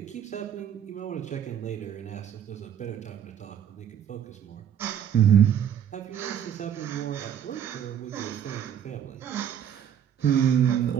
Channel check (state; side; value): quieter; left; 9.2 dB